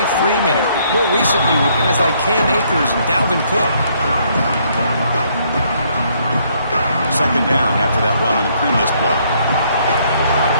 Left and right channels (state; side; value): inverted; both; correlation -0.68